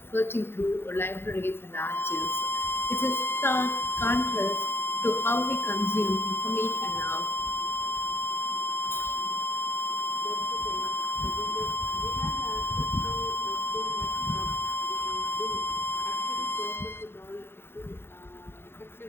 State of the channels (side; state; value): right; late; 0.11 ms